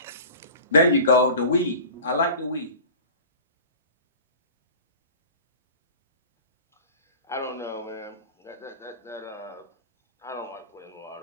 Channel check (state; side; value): inverted; both; correlation -0.39